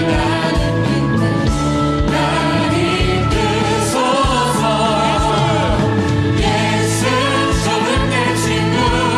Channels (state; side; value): identical; both; correlation 1.00